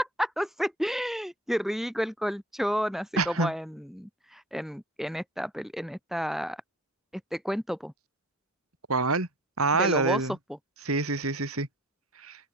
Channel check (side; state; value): both; normal; correlation 0.45